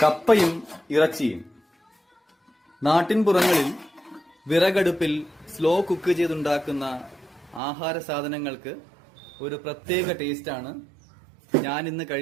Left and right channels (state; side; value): drops out; left; at 7.6 s